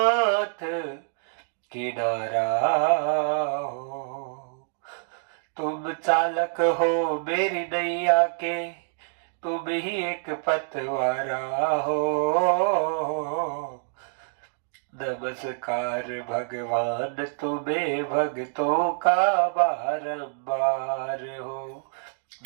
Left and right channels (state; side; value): silent; left; digital silence